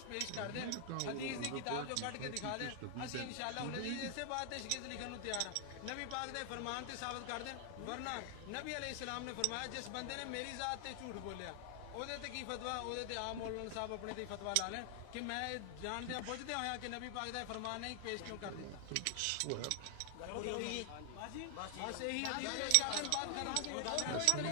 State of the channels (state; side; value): different; both; correlation 0.00